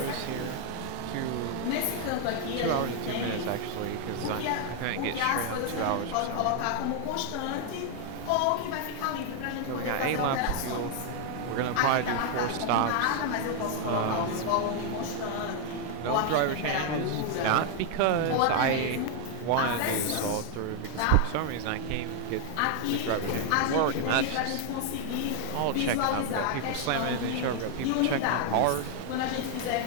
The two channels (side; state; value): both; different; correlation 0.00